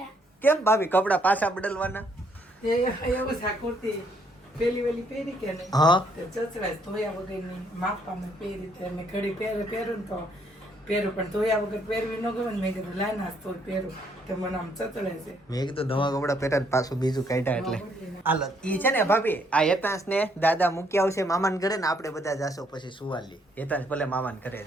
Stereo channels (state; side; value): normal; both; correlation 0.69